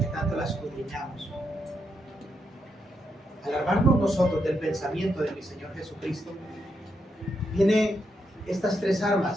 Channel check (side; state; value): both; normal; correlation 0.81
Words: tanto la escudriñamos? Al armarnos nosotros del pensamiento de mi Señor Jesucristo, vienen estas tres